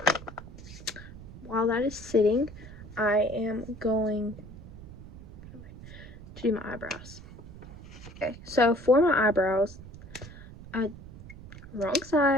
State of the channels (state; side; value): noise; right; rumble, 15 dB below the sound